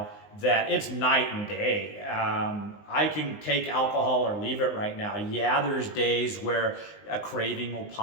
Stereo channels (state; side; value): late; right; 19 ms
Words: that it's night and day. I can take alcohol or leave it right now. Yeah, there's days where a craving will